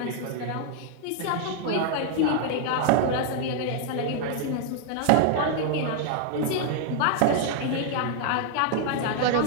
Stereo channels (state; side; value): different; both; correlation 0.00